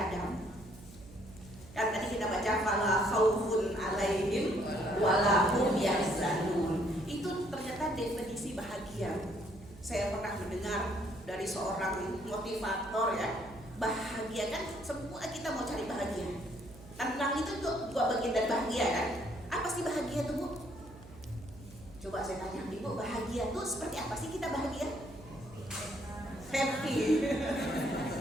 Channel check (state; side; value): noise; right; hum, 18 dB below the sound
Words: Dan tadi kita baca fala khaufun 'alaihim wala hum yahzanun. Itu ternyata definisi bahagia. Saya pernah mendengar dari seorang motivator ya, bahagia kan semua kita mau cari bahagia. Tenang itu juga bagian dari bahagia kan? Apa sih bahagia itu, Bu? Coba saya tanya, Ibu, bahagia itu seperti apa sih kita bahagia? Happy.